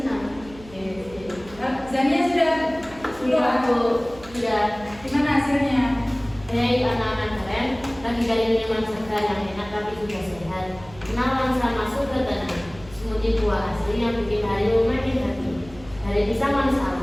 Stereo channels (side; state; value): right; noise; hum, 20 dB below the sound